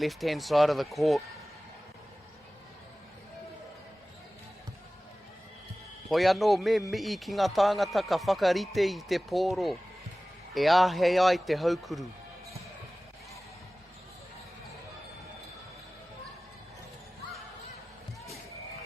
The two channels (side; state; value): both; normal; correlation 0.98